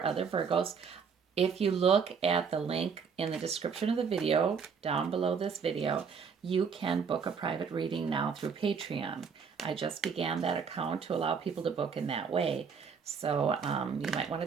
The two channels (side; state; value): left; quieter; 6.1 dB